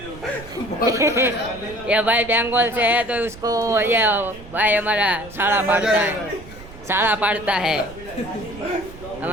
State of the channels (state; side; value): noise; right; rumble, 17 dB below the sound